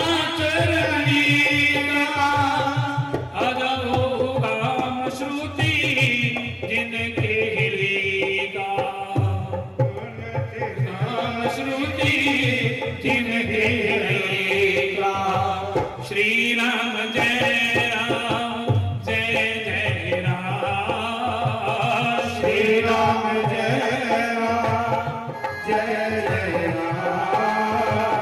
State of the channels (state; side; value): identical; both; correlation 1.00